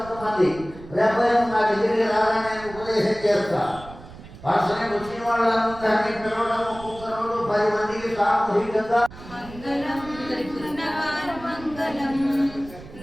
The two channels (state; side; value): noise; right; rumble, 17 dB below the sound